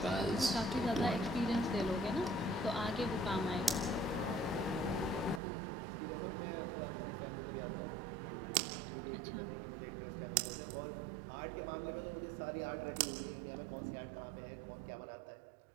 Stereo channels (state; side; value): drops out; left; at 5.4 s